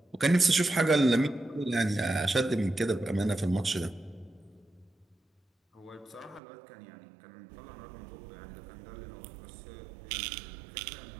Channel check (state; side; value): drops out; left; at 6.4 s